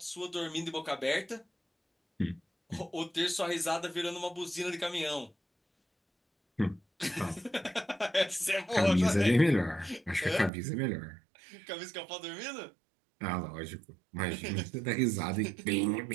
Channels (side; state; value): left; drops out; at 10.5 s